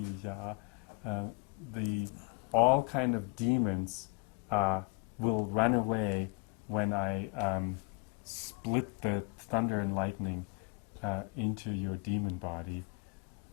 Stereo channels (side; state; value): right; quieter; 29.4 dB